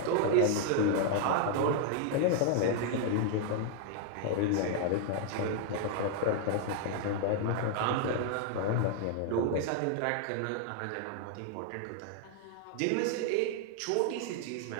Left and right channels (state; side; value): different; both; correlation 0.00